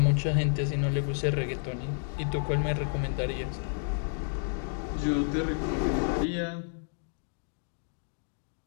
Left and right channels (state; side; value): silent; right; digital silence